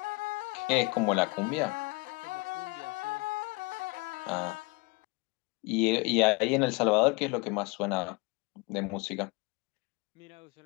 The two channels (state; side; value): quieter; right; 27.2 dB